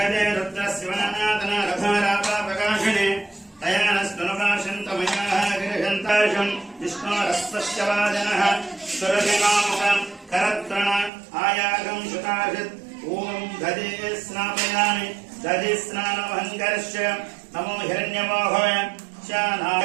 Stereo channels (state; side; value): drops out; left; at 11.1 s